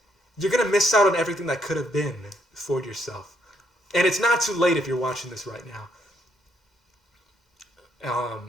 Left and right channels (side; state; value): both; normal; correlation 0.73